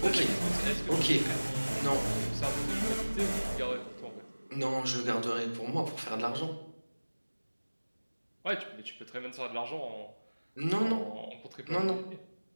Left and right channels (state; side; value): inverted; both; correlation -1.00